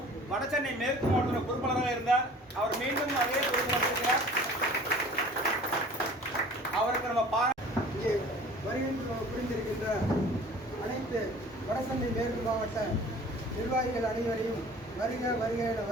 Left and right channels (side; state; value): both; normal; correlation 0.46